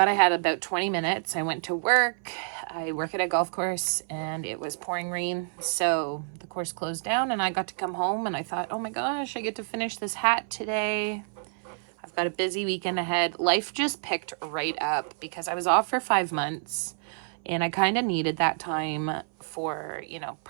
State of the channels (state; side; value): silent; left; 58 dB below the other